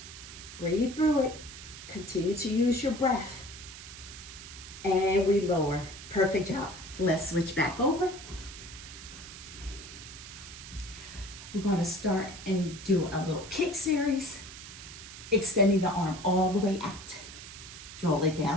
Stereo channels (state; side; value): noise; right; hiss, 13 dB below the sound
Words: Breathe through it. Continue to use your breath. And we lower. Perfect job. Let's switch back over. We're going to start and do a little kick series, extending the arm all the way out. Draw it